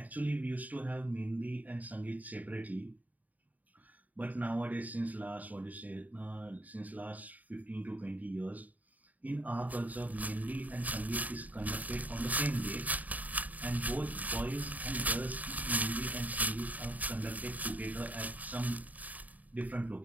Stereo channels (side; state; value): left; late; 0.076 ms